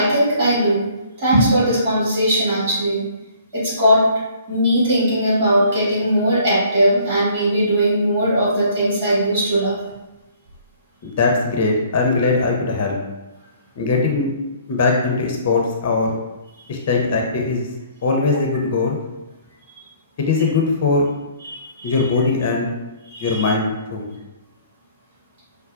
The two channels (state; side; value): inverted; both; correlation -0.57